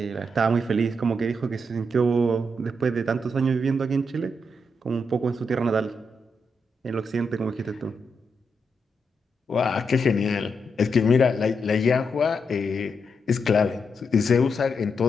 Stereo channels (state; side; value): normal; both; correlation 0.82